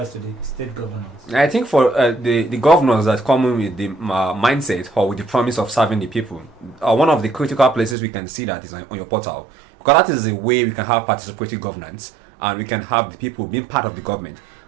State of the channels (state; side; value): drops out; left; at 8.0 s